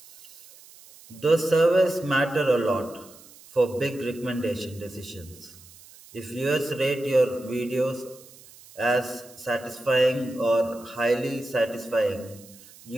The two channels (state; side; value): noise; right; hiss, 22 dB below the sound